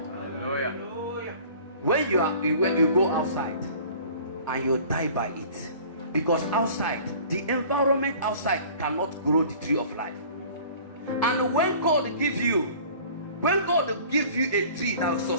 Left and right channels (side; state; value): both; inverted; correlation -0.47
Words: Hallelujah. When you go outside and you die by it, because outside, the environment outside cannot grow the tree of life. And when God give you a tree that will